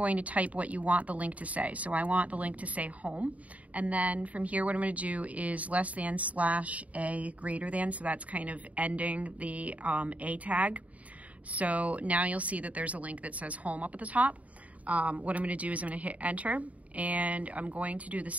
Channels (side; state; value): left; late; 0.069 ms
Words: to type what you want the link to say. So I want the link to say home. And then from here, what I'm going to do is less than / A greater than. So that's kind of ending the A tag. So now you'll see that there's a link that says home up at the top. What I'm going to do is I'm going to hit enter, and I'm going to do the